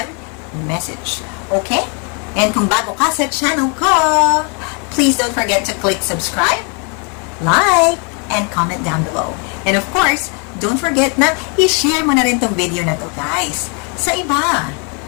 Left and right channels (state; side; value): quieter; right; 36.4 dB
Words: a message. Okay? And kung bago ka sa channel ko, please don't forget to click subscribe, like, and comment down below. And of course, don't forget na i-share mo na rin tong video na to, guys, sa iba.